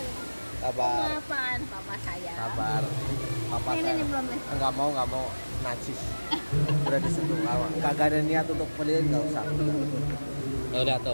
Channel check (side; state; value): both; inverted; correlation -1.00